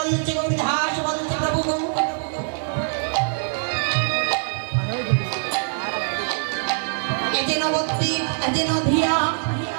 গৌরীদাস বলছে প্রভু গো এই যে নবদ্বীপ এই যে নদিয়া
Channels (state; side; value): silent; left; digital silence